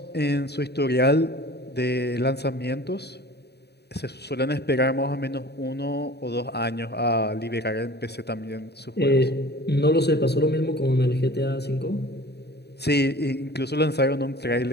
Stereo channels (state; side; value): late; right; 0.48 ms